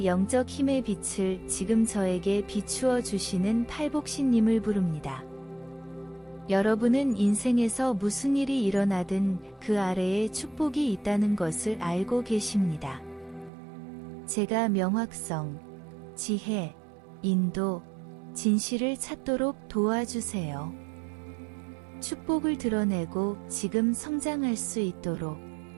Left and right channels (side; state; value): left; drops out; at 13.5 s